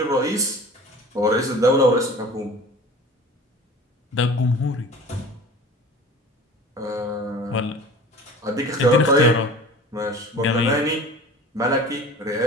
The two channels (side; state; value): both; normal; correlation 0.40